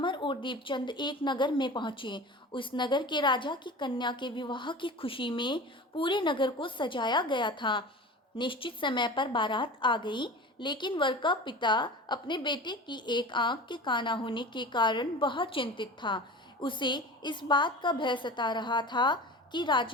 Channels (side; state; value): both; normal; correlation 0.35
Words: और दीपचंद एक नगर में पहुंचे। उस नगर के राजा की कन्या के विवाह की खुशी में पूरे नगर को सजाया गया था। निश्चित समय पर बारात आ गई, लेकिन वर का पिता अपने बेटे की एक आंख के काना होने के कारण बहुत चिंतित था। उसे इस बात का भय सता रहा था कि